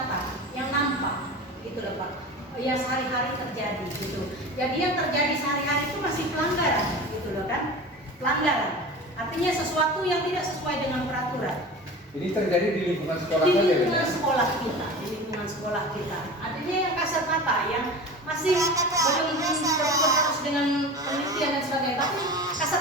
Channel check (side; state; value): both; normal; correlation 0.34